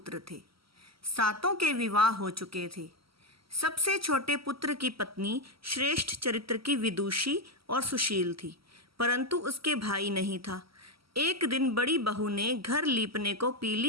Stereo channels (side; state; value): left; late; 0.75 ms